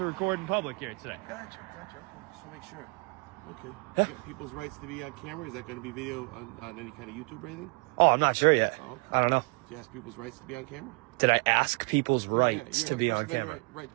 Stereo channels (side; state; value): left; quieter; 30.2 dB